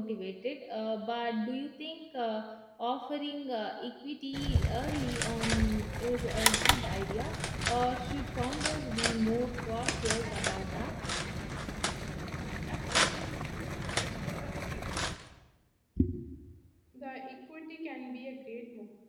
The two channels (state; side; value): identical; both; correlation 1.00